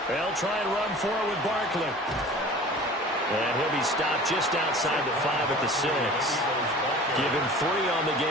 They'll try and run for it with Barkley. And he'll be stopped just outside the 5 at the 6. Give him 3 on the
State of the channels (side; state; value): both; normal; correlation 0.42